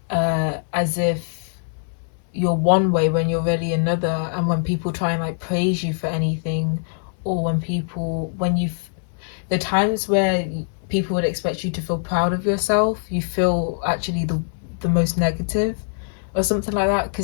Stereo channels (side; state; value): right; silent; 61 dB below the other